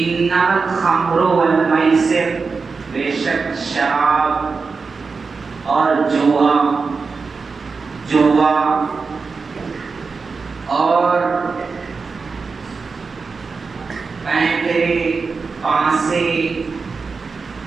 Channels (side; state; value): left; quieter; 4.7 dB